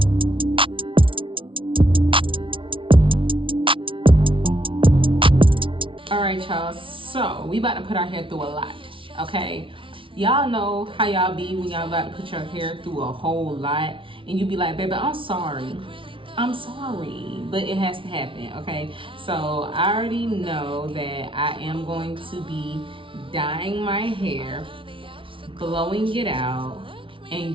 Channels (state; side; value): late; left; 0.25 ms